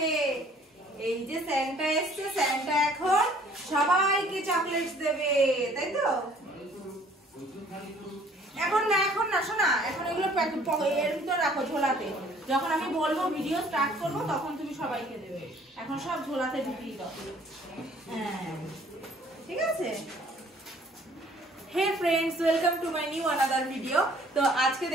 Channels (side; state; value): both; normal; correlation 0.57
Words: এই যে স্যান্টা এসছে, স্যান্টা এখন সবাইকে চকলেটস দেবে, তাই তো? এখন না শোনা, এখন এগুলো এর ভিতর রাখো ঝোলাতে। যখন আমি বলবো ভিডিও স্টার্ট করবো তখন তুমি সবাইকে দেবে। এখন সব ঝোলাতে ঢুকিয়ে দাও। হ্যাঁ ঠিক আছে। Hey friends, welcome to my new another video. তো আজকে